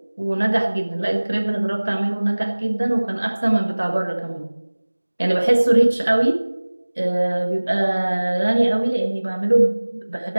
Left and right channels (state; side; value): inverted; both; correlation -1.00